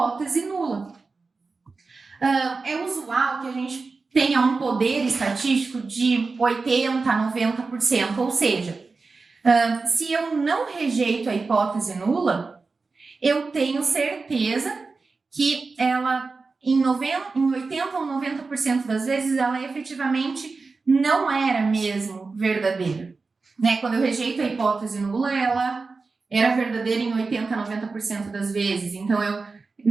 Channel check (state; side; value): quieter; left; 4.1 dB